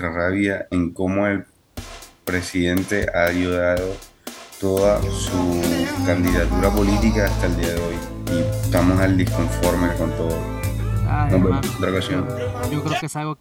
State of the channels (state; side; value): identical; both; correlation 1.00